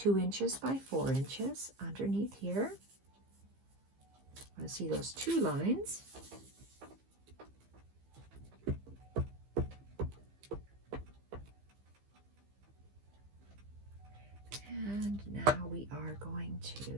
inches by 4 inches underneath here. I want to see those 2 lines. And now we are going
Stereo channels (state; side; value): late; left; 15 ms